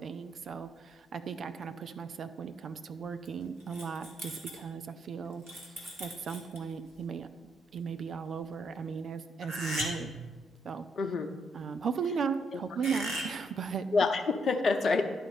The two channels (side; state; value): both; normal; correlation 0.75